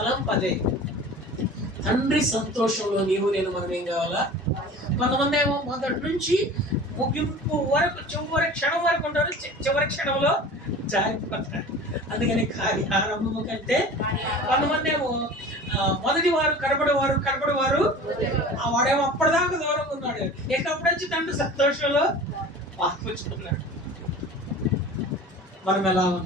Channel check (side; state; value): both; normal; correlation 0.39